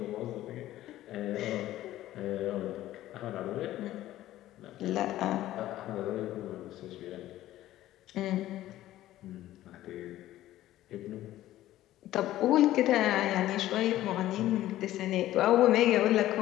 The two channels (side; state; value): right; quieter; 14.4 dB